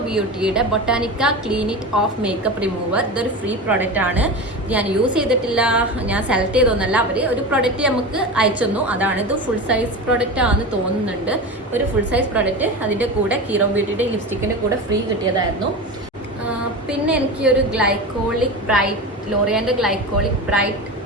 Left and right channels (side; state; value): both; normal; correlation 0.26